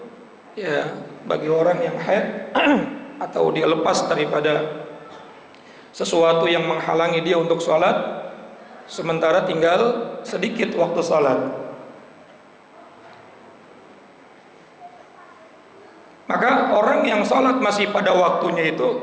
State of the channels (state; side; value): identical; both; correlation 1.00